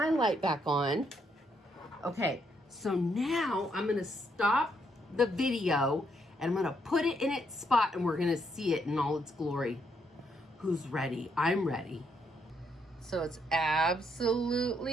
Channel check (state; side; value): normal; both; correlation 0.75